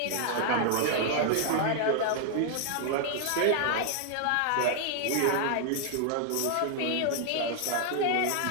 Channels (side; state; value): both; different; correlation 0.00